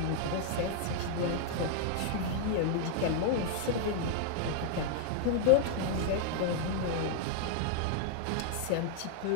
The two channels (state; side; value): different; both; correlation 0.00